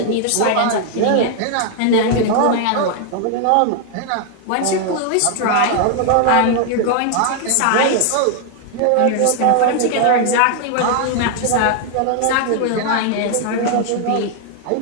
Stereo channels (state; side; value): different; both; correlation 0.00